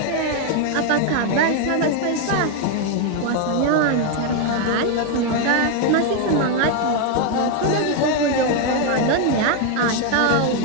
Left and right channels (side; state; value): both; different; correlation 0.01